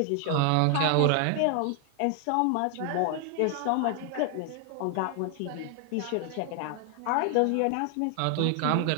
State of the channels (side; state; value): both; different; correlation 0.00